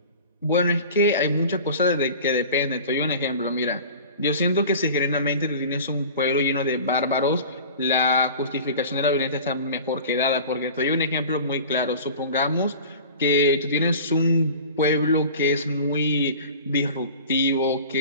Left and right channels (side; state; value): both; inverted; correlation -0.39